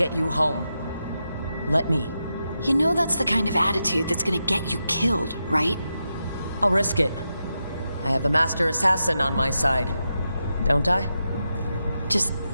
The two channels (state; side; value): inverted; both; correlation -0.88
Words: you home. Let me. You know that's the kind of attitude that's gonna get you killed, right? I'll risk it. I have a master assassin on my side. Don't I? Just